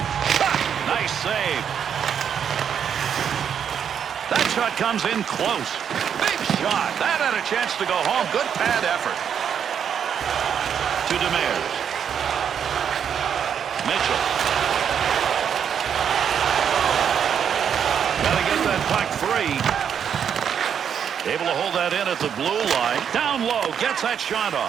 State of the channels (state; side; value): quieter; left; 8.0 dB